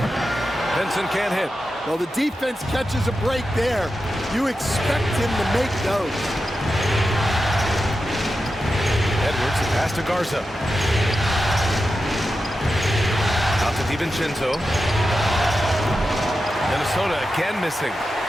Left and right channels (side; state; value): both; normal; correlation 0.90